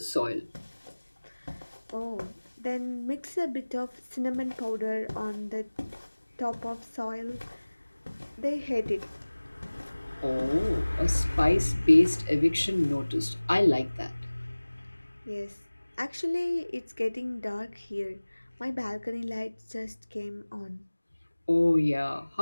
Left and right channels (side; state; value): both; inverted; correlation -1.00